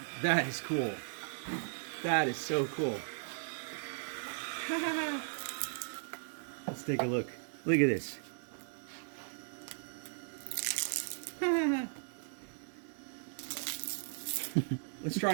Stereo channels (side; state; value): left; silent; digital silence